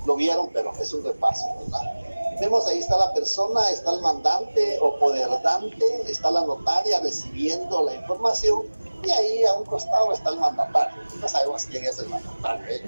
lo vieron, pero es un repaso, ¿verdad? Vemos ahí está la persona, está el mandante o poderdante, está la notaria recibiendo la información y ahí a un costado está el mandatario. No sabemos quién es el mandatario,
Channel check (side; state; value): both; inverted; correlation -1.00